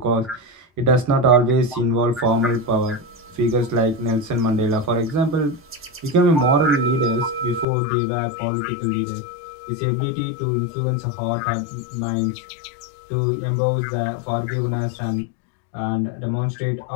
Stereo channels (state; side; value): drops out; right; at 7.7 s